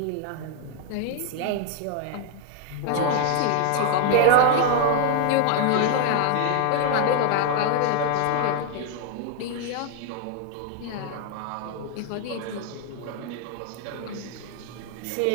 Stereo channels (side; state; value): both; different; correlation 0.00